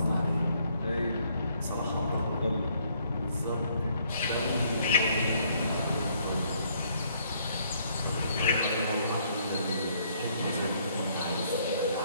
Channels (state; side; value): inverted; both; correlation -0.67